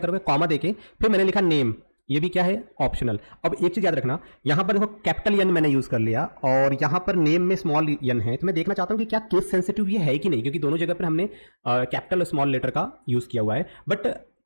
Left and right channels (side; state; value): both; inverted; correlation -1.00